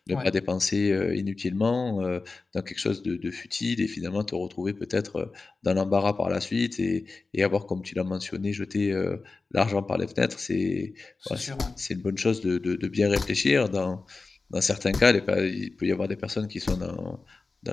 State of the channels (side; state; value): right; quieter; 3.9 dB